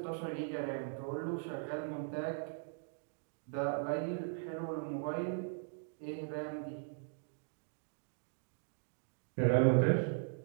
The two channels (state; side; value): silent; left; digital silence